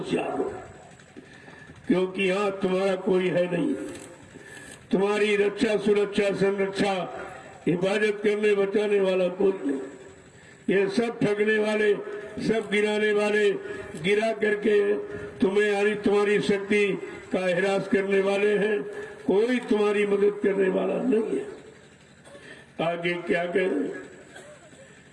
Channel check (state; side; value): identical; both; correlation 1.00